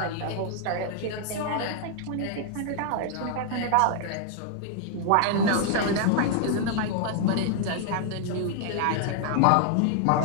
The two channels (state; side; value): different; both; correlation 0.00